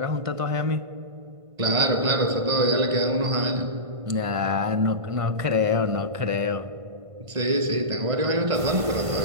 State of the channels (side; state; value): left; late; 1.5 ms